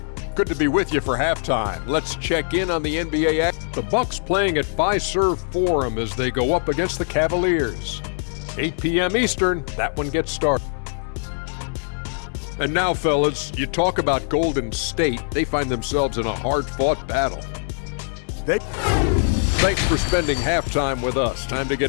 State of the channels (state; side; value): silent; right; 64 dB below the other